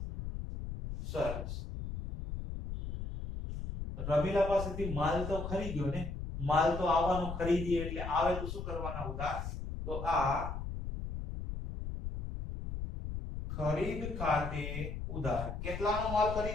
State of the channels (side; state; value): left; noise; rumble, 6 dB below the sound